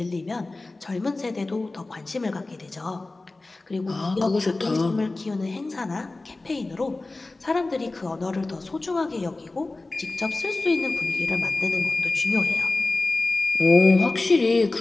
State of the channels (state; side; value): quieter; right; 3.2 dB